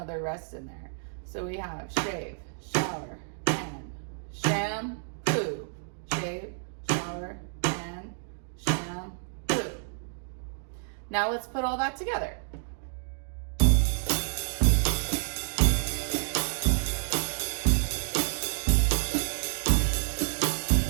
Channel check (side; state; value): left; silent; digital silence